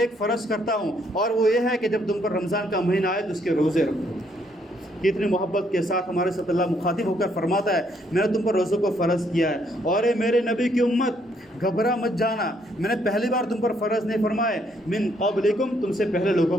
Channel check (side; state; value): both; normal; correlation 0.70